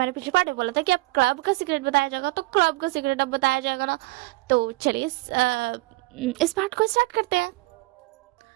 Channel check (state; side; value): quieter; left; 22.5 dB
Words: पिछले पार्ट में बोला था कि अब क्लब का सीक्रेट बताया जाएगा, तो क्लब का सीक्रेट अब बताया जाएगा ना। तो चलिए इस पार्ट को स्टार्ट करते हैं।